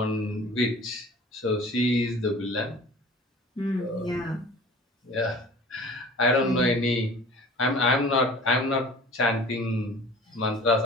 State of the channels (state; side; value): normal; both; correlation 0.44